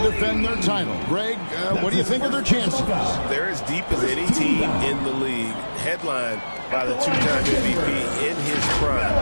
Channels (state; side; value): inverted; both; correlation -1.00